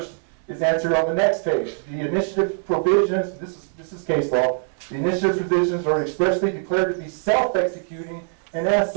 is answered on the next page. The initiative provisions, this is case law, the initiative provisions are expressly declared to be self-executing, and as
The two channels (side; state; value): left; silent; 59 dB below the other